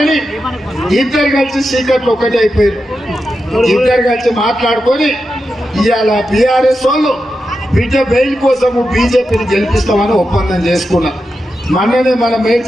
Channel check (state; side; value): normal; both; correlation 0.89